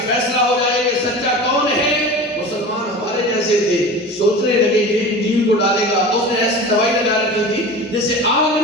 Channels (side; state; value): both; normal; correlation 0.34